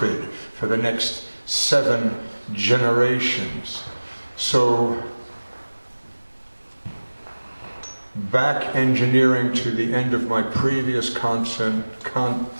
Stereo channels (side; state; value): both; inverted; correlation -1.00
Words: for the next 7 generations. So, back engineering to the end of my previous